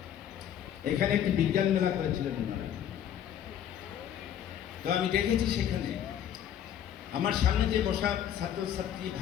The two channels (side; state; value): right; quieter; 9.9 dB